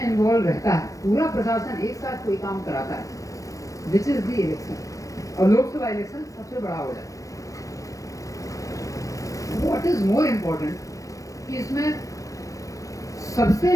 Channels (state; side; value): late; right; 0.16 ms